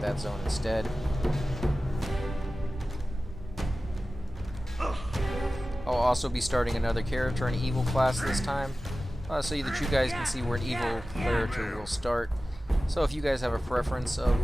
that zone instead. I'll also be starting another character, an evil class this time, so that you guys can see where an evil character will start. So if you guys have a preference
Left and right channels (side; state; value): both; normal; correlation 0.95